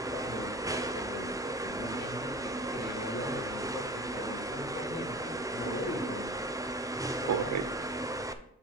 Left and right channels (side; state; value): both; normal; correlation 0.36